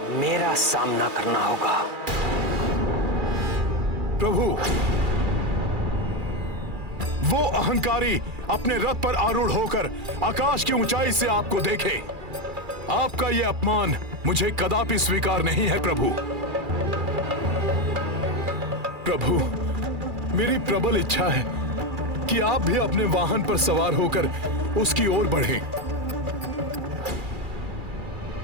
मेरा सामना करना होगा। प्रभु, वो अहंकारी अपने रथ पर आरूढ़ होकर आकाश की ऊंचाई से आपको देखे। आपका यह अपमान मुझे कदापि स्वीकार नहीं है प्रभु। प्रभु, मेरी प्रबल इच्छा है कि आप भी अपने वाहन पर सवार होकर उसकी ओर बढ़ें।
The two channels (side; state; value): left; late; 2.4 ms